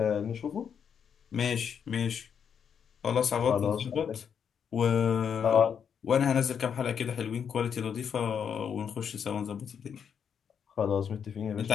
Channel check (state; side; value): quieter; right; 7.5 dB